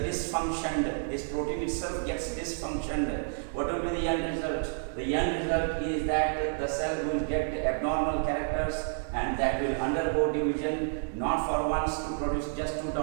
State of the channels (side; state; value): left; silent; digital silence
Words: dysfunctioned, this protein itself gets dysfunctioned, what will be the end result? The end result is that the cell will get abnormal characters and that will undergo division, not for once to produce just two